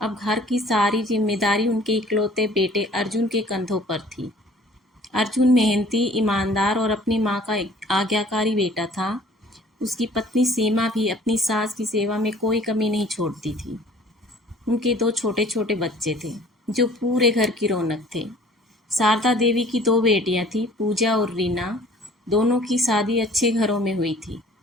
अब घर की सारी जिम्मेदारी उनके इकलौते बेटे अर्जुन के कंधों पर थी। अर्जुन मेहनती, ईमानदार और अपनी माँ का आज्ञाकारी बेटा था। उसकी पत्नी सीमा भी अपनी सास की सेवा में कोई कमी नहीं छोड़ती थी। उनके दो छोटे छोटे बच्चे थे जो पूरे घर की रौनक थे। शारदा देवी की दो बेटियां थीं, पूजा और रीना। दोनों की शादी अच्छे घरों में हुई थी।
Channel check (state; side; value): normal; both; correlation 0.52